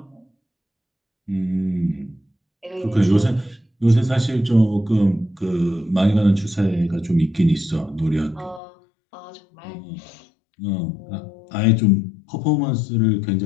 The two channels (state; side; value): drops out; right; at 8.6 s